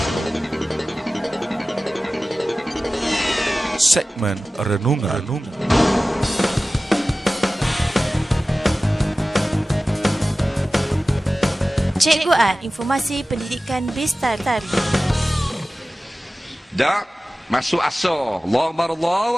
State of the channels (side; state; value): both; normal; correlation 0.96